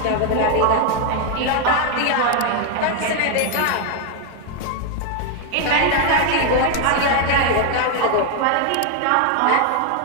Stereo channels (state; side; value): different; both; correlation 0.01